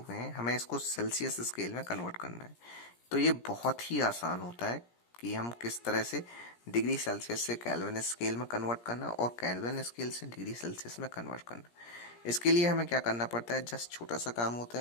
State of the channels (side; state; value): right; late; 17 ms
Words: हैं, हमें इसको सेल्सियस स्केल में कन्वर्ट करना है। तो ये बहुत ही आसान होता है कि हम किस तरह से डिग्री सेल्सियस से केल्विन स्केल में कन्वर्ट करना और केल्विन स्केल से डिग्री सेल्सियस में कन्वर्ट करना। इसके लिए हमें क्या करना पड़ता है, जस्ट छोटा सा काम होता